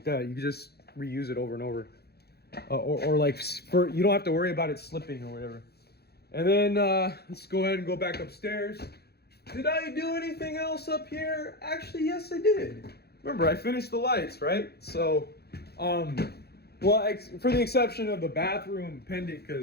that. You can just reuse it over and over, or like you don't have to worry about it slipping or whatever. And then let's go ahead and go back upstairs. Did I do anything else up here? Actually, yes, I did. Remember, I finished the lights, right? So, well, for the exception of the bathroom pendant,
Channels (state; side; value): late; right; 0.47 ms